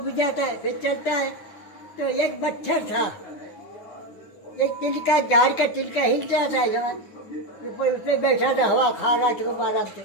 जाता है, फिर चलता है। तो एक मच्छर था, एक तिलका, झाड़ का तिलका हिल रहा था, उसमें बैठा था, हवा खा रहा था खूब आराम से।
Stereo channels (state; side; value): late; right; 9.6 ms